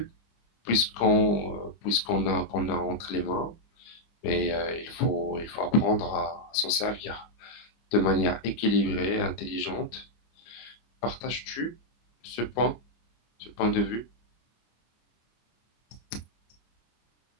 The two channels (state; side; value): late; right; 25 ms